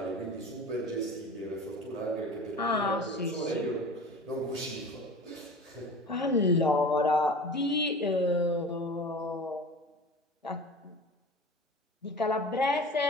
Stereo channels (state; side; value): normal; both; correlation 0.36